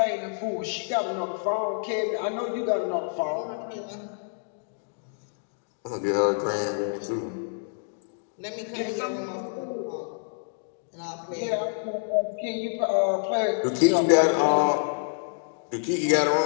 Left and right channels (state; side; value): silent; right; digital silence